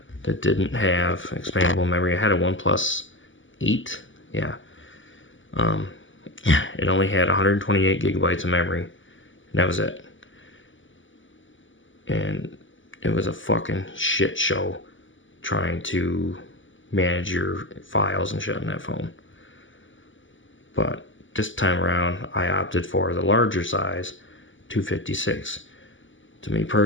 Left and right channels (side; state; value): right; late; 0.56 ms